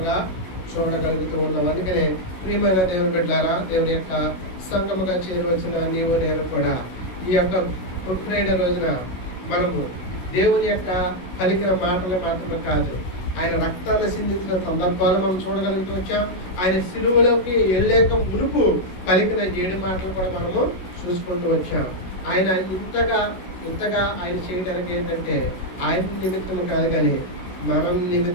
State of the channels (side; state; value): right; late; 16 ms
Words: చూడగలుగుతూ ఉన్నాం. అందుకనే ప్రియమైన దేవుని బిడ్డలారా, దేవుని యొక్క సంఘముగా చేరవలసిన నీవు నేను కూడా ఈ యొక్క గుడ్ ఫ్రైడే రోజున మనము దేవుని యొక్క పలికిన మాటలు మాత్రమే కాదు, ఆయన రక్తాన్ని సిందించిన సందర్భాలు మనం చూడగలుగుతూ వచ్చాం. ఆయన సిలువలోకి వెళ్ళేక మునుపు పలికిన 7 మాటలు కూడా మనము చూసుకుంటూ వచ్చాం. ఆయన ఇంతగా ఆయన చేయడానికి ఏంటంటే ఆయన నిమిత్తము కాదు కానీ మన